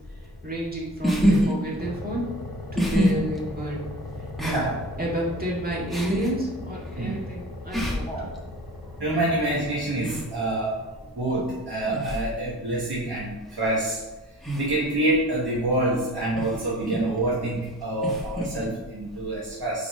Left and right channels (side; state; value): both; normal; correlation 0.40